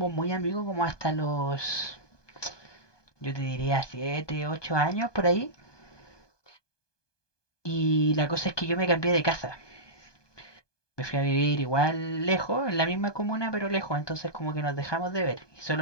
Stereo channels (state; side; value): late; right; 1.2 ms